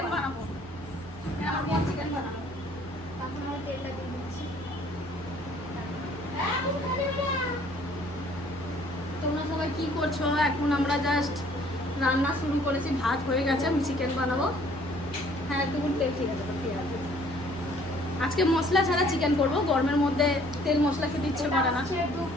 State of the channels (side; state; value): left; noise; hum, 21 dB below the sound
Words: বানাবো, আমার বোন চিকেন বানাবো। তখন আমি তেলটা দিয়ে দিচ্ছি। তোমরা সবাই কি করছো? এখন আমরা জাস্ট রান্না শুরু করেছি, ভাত হয়ে গেছে, আমি চিকেন বানাবো। হ্যাঁ একটু তেল, ঠিক আছে ঠিক আছে। আজকে মশলা ছাড়া চিকেন করবো, গরমের মধ্যে তেল মশলা খেতে ইচ্ছে করে না। 2